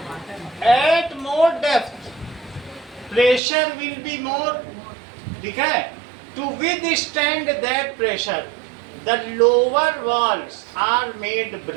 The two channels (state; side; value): drops out; left; at 3.4 s